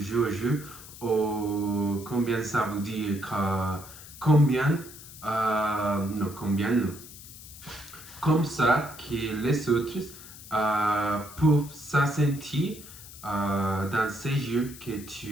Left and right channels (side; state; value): left; noise; hiss, 16 dB below the sound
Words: ou combien ça veut dire que combien non comme ça que les autres peuvent se sentir dans ces jeux que